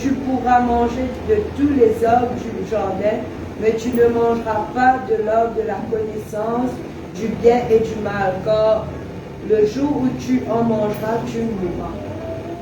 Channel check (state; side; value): identical; both; correlation 1.00